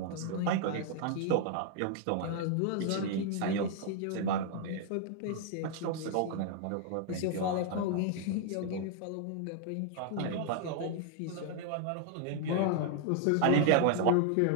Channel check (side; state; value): both; different; correlation 0.00